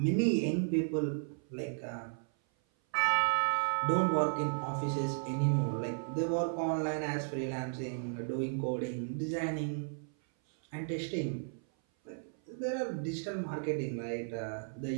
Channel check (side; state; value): left; silent; 55 dB below the other